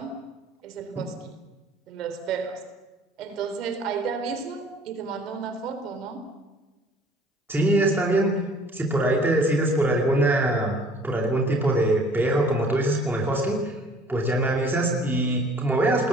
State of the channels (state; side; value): normal; both; correlation 0.53